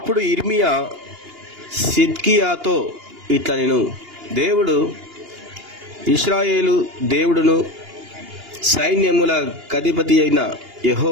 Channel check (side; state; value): left; late; 2.8 ms